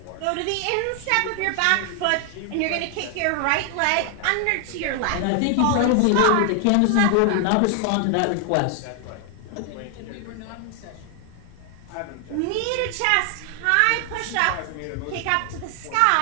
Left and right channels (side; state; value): both; different; correlation 0.00